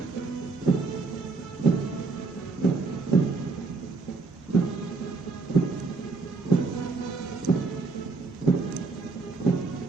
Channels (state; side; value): quieter; left; 4.0 dB